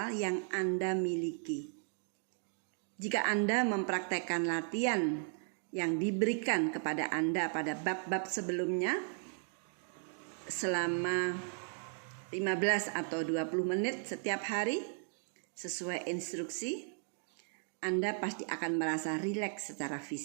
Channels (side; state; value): left; silent; 54 dB below the other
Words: yang Anda miliki. Jika Anda mempraktekkan latihan yang diberikan kepada Anda pada bab-bab sebelumnya selama 15 atau 20 menit setiap hari sesuai instruksi, Anda pasti akan merasa rileks secara